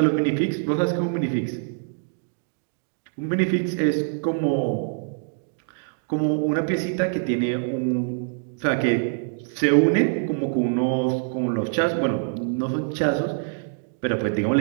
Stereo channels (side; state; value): left; silent; digital silence